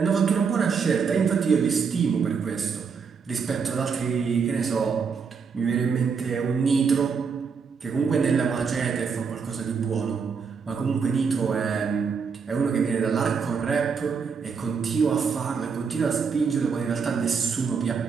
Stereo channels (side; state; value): left; quieter; 5.8 dB